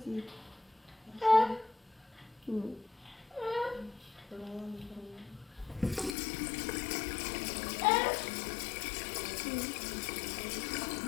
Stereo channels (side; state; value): right; drops out; at 6.2 s